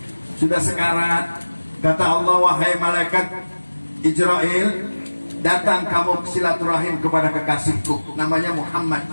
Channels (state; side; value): inverted; both; correlation -1.00